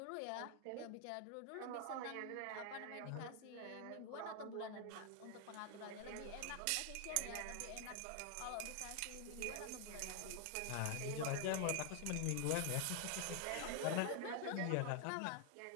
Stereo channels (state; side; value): different; both; correlation 0.00